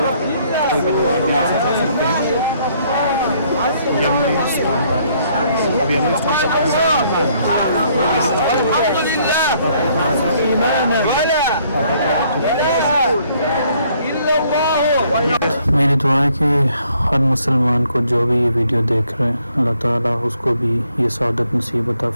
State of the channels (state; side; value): inverted; both; correlation -0.66